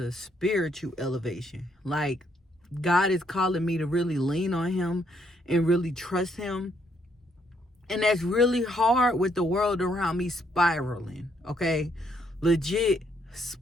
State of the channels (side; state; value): both; normal; correlation 0.72